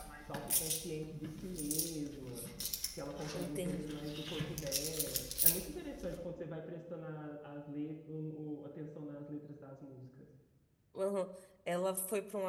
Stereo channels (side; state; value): both; identical; correlation 1.00